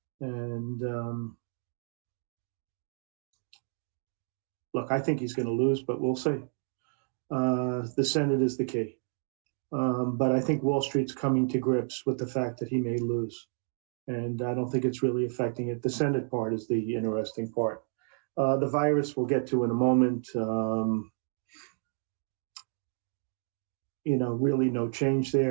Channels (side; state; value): left; silent; 57 dB below the other